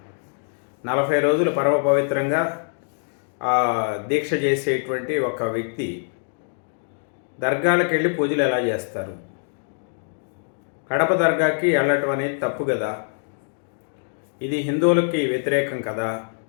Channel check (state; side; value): silent; right; digital silence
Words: 40 రోజులు పరమ పవిత్రంగా దీక్ష చేసేటువంటి ఒక వ్యక్తి దర్గాలకు వెళ్ళి పూజలు ఎలా చేస్తారు? కడప దర్గాకి వెళ్ళటం అనేది తప్పు కదా. ఇది హిందువులకి వ్యతిరేకం కదా,